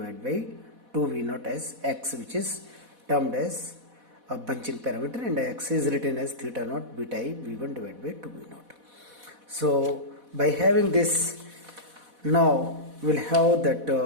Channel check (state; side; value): late; left; 4.1 ms